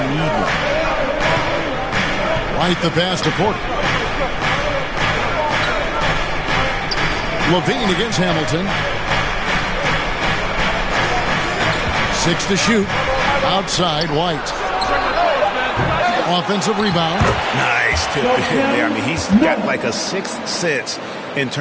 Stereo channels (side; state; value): both; identical; correlation 1.00